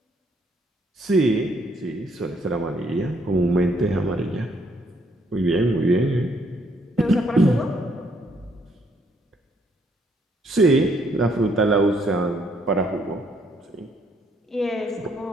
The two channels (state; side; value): normal; both; correlation 0.70